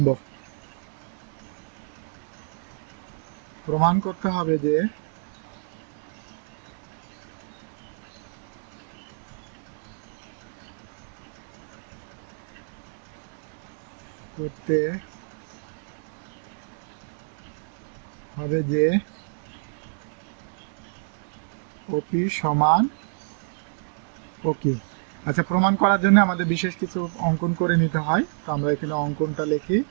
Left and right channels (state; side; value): silent; left; digital silence